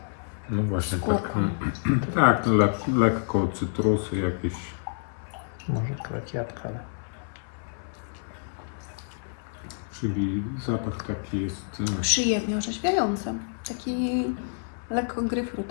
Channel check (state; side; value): silent; right; 59 dB below the other